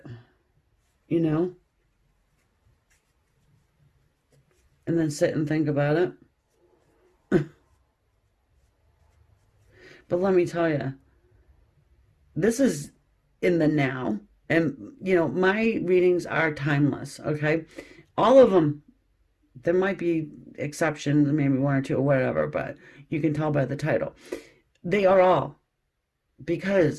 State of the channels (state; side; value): identical; both; correlation 1.00